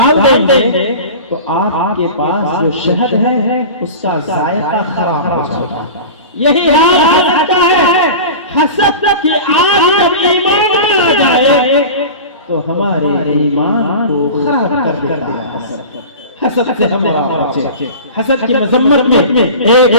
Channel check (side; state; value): both; inverted; correlation -0.33